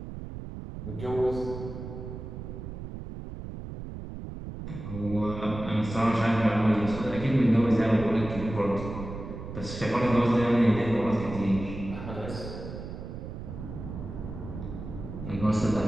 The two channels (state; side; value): noise; right; rumble, 9 dB below the sound